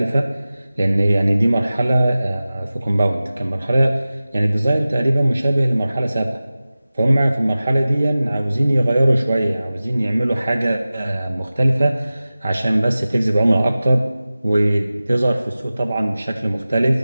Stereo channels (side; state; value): both; inverted; correlation -0.96